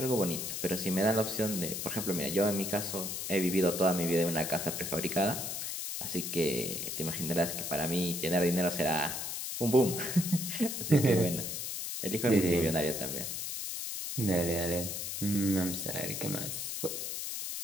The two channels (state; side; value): noise; left; hiss, 4 dB below the sound